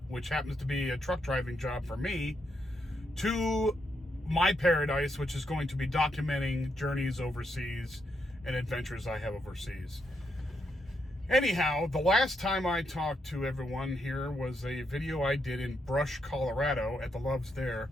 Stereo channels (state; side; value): normal; both; correlation 0.80